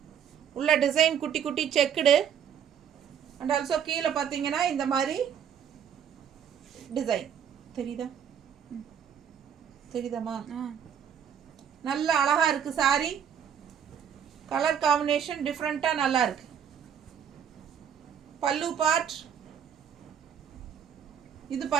உள்ள டிசைன் குட்டி குட்டி செக்குடு. அண்ட் ஆல்சோ கீழே பார்த்தீங்கன்னா இந்த மாதிரி டிசைன் தெரியுதாம்மா? நல்ல அழகா இருக்கு சாரி. கலர் காம்பினேஷன் டிஃப்ரெண்ட்டாக நல்லா இருக்கு. பல்லு பார்ட், இது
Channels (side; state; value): left; quieter; 8.4 dB